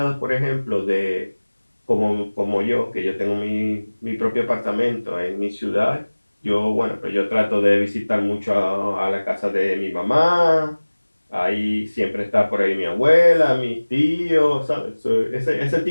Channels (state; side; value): inverted; both; correlation -1.00